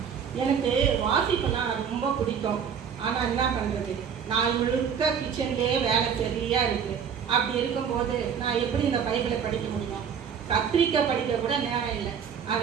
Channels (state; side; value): quieter; left; 7.4 dB